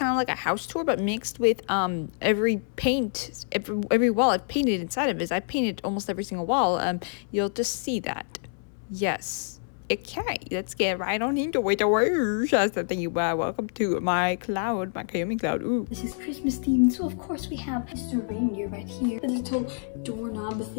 of like a house tour, but mixed with every wall I've painted inside of it. I painted almost every single wall. You'll just see that. Yes. Okay, let's get right on into it. Welcome to my cloud, my Kaomi cloud. Ooh. This is Christmas themed, so of course we have Mr. Reindeer right here. The little doorknob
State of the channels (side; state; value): right; silent; 60 dB below the other